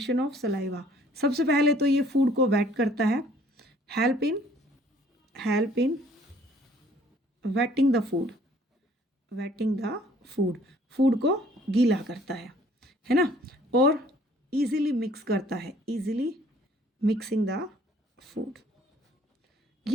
ऑफ सलाइवा, सबसे पहले तो ये फूड को वेट करता है। Help in waiting the food. Waiting the food, food को गीला करता है ना। और इजीली मिक्स करता है, इजीली मिक्सिंग द फूड।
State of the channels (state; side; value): normal; both; correlation 0.58